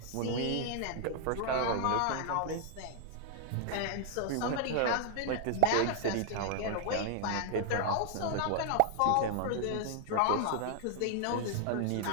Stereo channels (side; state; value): both; different; correlation 0.00